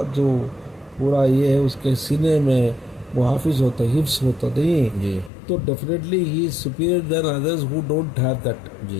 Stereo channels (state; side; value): drops out; right; at 5.3 s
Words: جو پورا یہ ہے اس کے سینے میں وہ حافظ ہوتا ہے، حفظ ہوتا نہیں جی تو definitely he is superior than others who don't have that.